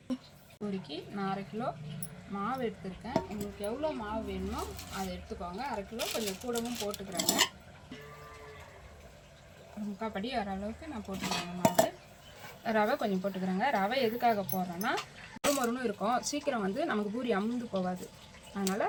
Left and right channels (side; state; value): both; identical; correlation 1.00